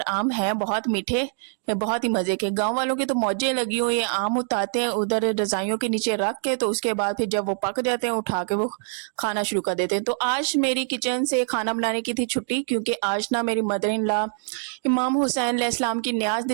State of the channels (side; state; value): left; silent; digital silence